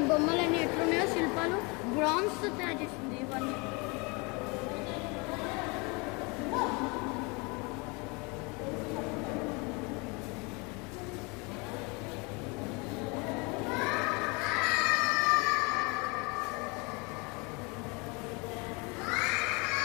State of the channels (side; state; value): right; quieter; 28.9 dB